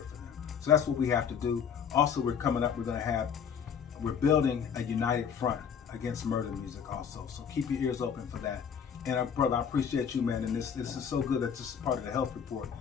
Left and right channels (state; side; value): quieter; right; 7.4 dB